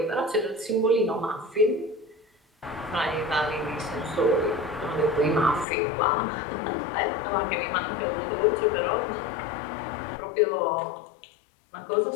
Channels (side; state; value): right; drops out; at 5.7 s